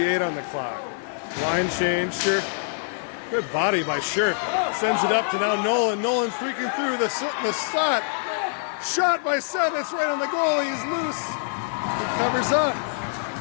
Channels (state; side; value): silent; right; digital silence